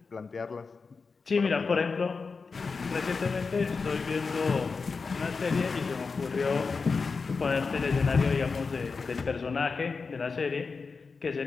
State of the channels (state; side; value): quieter; right; 4.7 dB